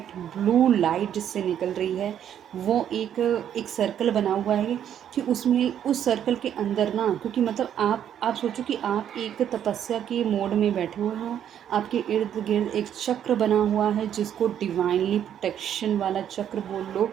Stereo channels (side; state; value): left; quieter; 9.7 dB